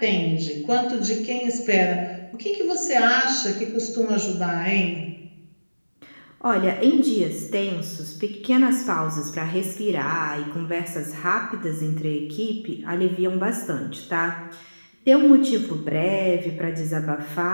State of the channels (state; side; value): inverted; both; correlation -1.00